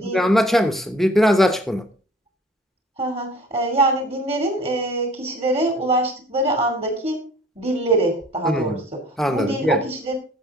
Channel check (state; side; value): normal; both; correlation 0.50